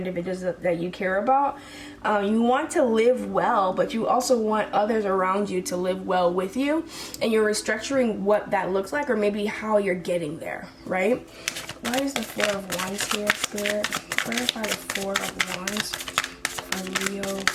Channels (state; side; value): identical; both; correlation 1.00